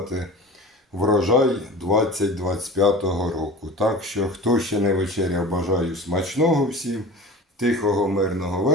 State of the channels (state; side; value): normal; both; correlation 0.36